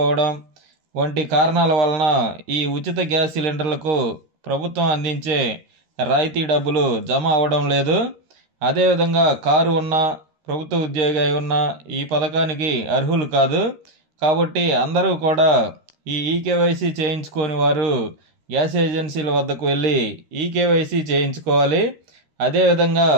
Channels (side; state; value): left; late; 13 ms